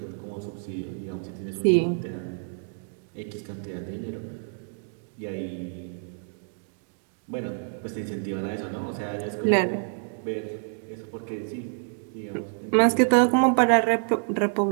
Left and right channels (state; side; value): silent; left; digital silence